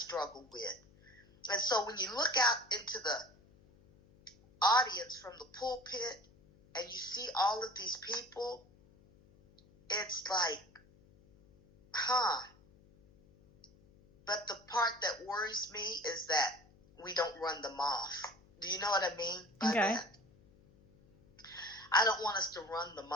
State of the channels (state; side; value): noise; left; hum, 27 dB below the sound